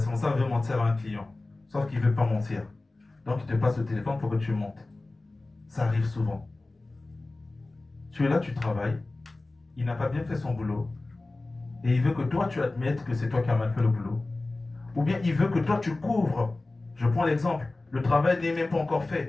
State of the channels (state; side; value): quieter; right; 3.1 dB